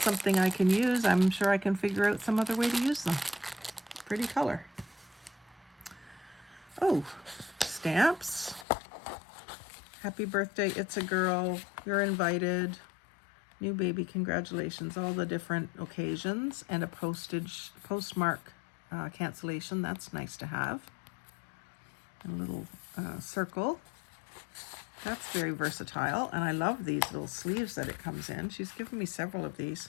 I can use, I'm sure I can figure out some other way to use them. Pretty color. Oh, stamps. Happy birthday, it's a girl. You're invited. New baby, congratulations. All the different occasions and a postmark cancellation. That's nice to have. A little circle. That's very versatile. And I love these little sleeves that it comes in. She's given me several of these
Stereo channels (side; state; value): right; drops out; at 8.7 s